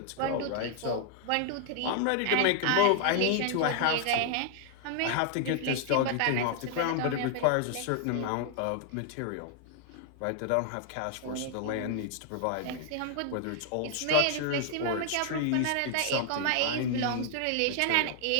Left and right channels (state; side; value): different; both; correlation 0.00